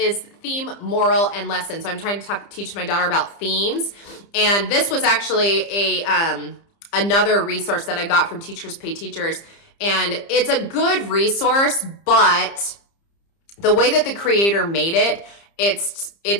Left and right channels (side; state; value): right; late; 30 ms